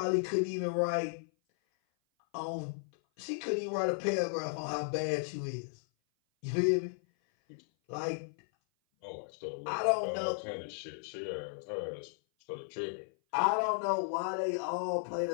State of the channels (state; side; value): silent; right; 55 dB below the other